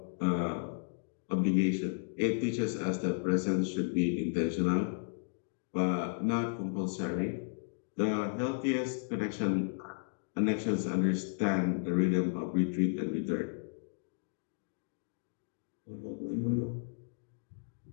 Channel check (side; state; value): right; silent; digital silence